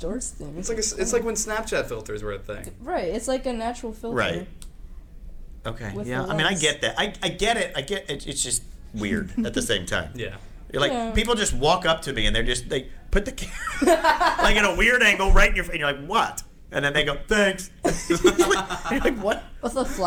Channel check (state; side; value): identical; both; correlation 1.00